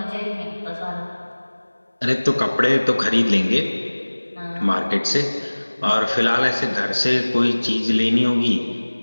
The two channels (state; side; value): inverted; both; correlation -1.00